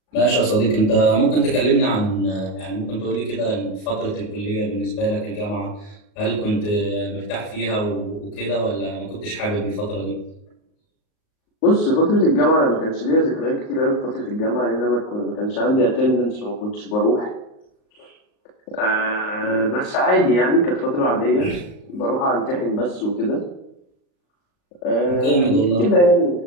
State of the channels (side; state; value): right; late; 38 ms